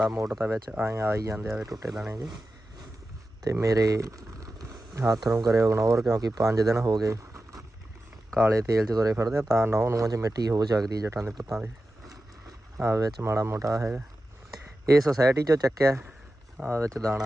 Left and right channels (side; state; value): both; normal; correlation 0.93